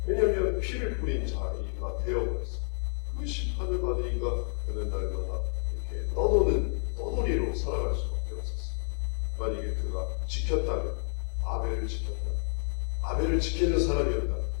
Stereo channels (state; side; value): silent; right; digital silence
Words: 왜냐하면 피를 뿌린 자리가 되어버렸어. 그 심판을 받으니까 그는 날마다 이렇게 떠돌이로 살아갈 수밖에 없었어. 만약에 그가 지켰다면, 아벨을 지키는 사람이었다면,